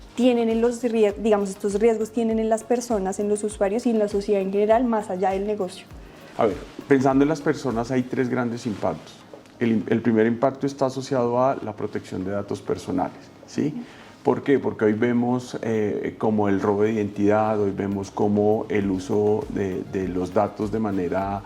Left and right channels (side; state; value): both; identical; correlation 1.00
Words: tienen estos riesgos tienen en las personas, en los usuarios y en la sociedad en general, más allá del negocio? A ver, pensando en las personas hay tres grandes impactos. El primer impacto está asociado a la protección de datos personales, ¿sí? ¿Por qué? Porque hoy vemos como el robo de identidad, hoy vemos como el uso de los datos de manera